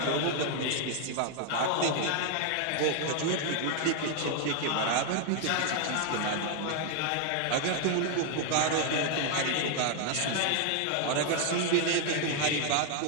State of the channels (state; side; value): different; both; correlation 0.00